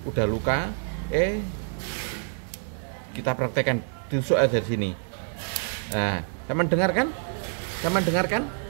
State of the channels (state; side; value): silent; left; 60 dB below the other